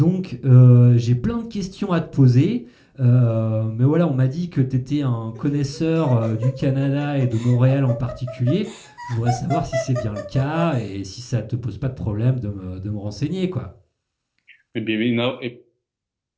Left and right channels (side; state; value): both; identical; correlation 1.00